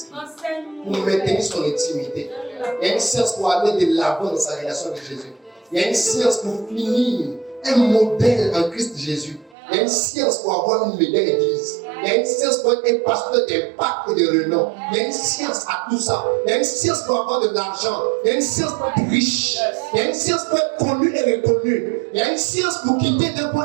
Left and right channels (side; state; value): left; drops out; at 9.6 s